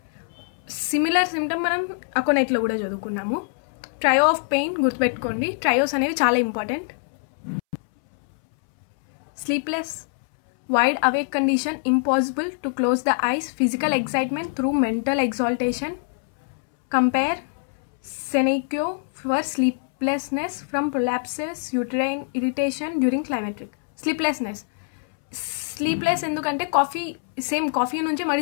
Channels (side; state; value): right; silent; 63 dB below the other